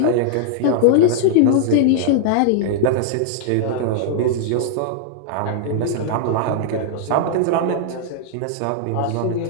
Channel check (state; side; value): different; both; correlation -0.01